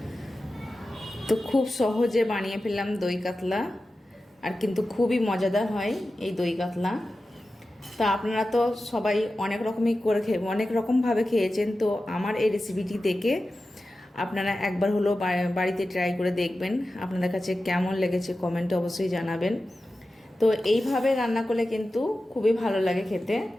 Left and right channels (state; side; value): normal; both; correlation 0.94